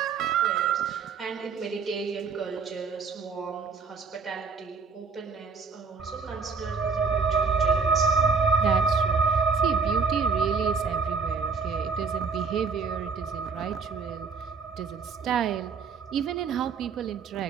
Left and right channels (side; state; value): left; quieter; 5.1 dB